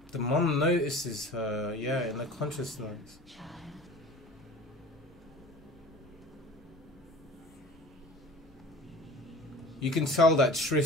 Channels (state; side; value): normal; both; correlation 0.41